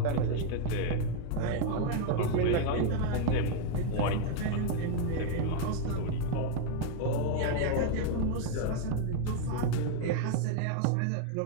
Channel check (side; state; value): both; different; correlation 0.00